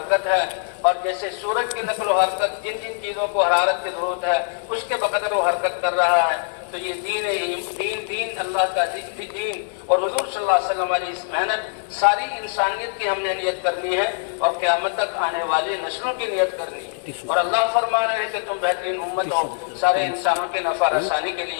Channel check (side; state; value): right; silent; digital silence